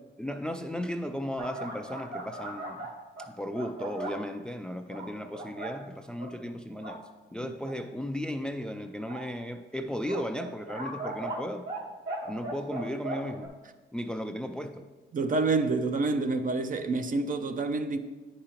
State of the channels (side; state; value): both; normal; correlation 0.58